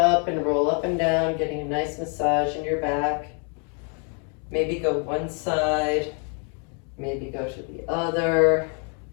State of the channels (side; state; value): right; quieter; 39.8 dB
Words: and roll up and down, getting a nice massage in your back. Maybe go one side. Maybe go to the other.